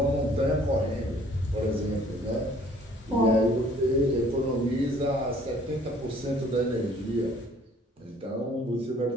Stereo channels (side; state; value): both; normal; correlation 0.57